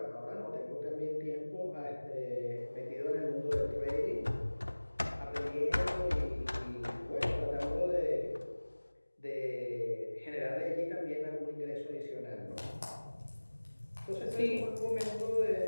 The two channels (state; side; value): inverted; both; correlation -1.00